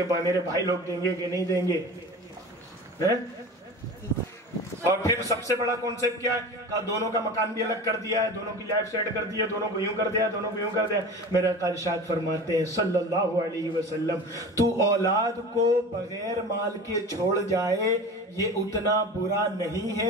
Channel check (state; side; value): normal; both; correlation 0.34